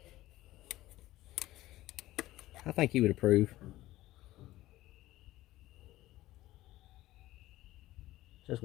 I think he would approve. Just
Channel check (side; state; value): right; quieter; 16.3 dB